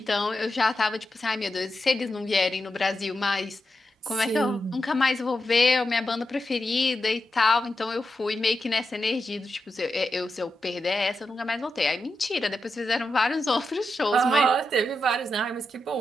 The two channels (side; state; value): both; normal; correlation 0.87